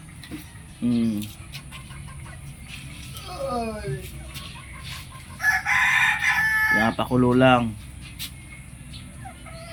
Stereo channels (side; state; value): both; identical; correlation 1.00